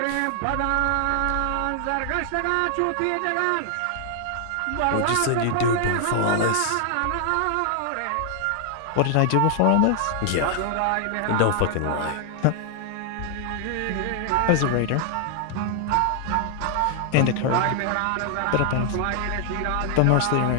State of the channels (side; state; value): both; different; correlation 0.00